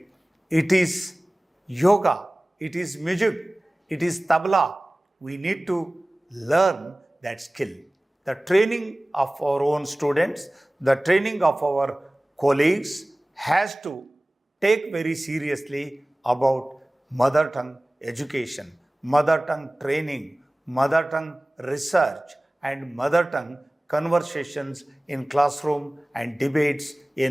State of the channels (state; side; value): normal; both; correlation 0.98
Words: It is yoga. It is music. It is tabla. We need to learn that skill. The training of our own students, the training of our colleagues has to take very seriously about mother tongue education, mother tongue training, mother tongue research, and mother tongue conversations in classroom and debates